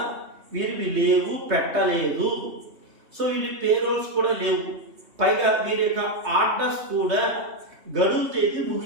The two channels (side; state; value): left; late; 3.1 ms